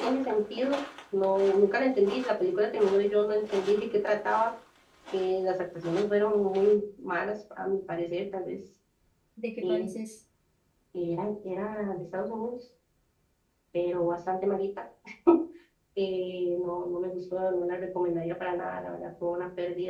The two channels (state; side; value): identical; both; correlation 1.00